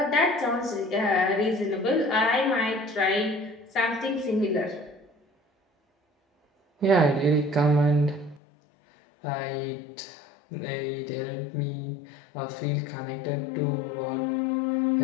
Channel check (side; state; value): right; drops out; at 8.4 s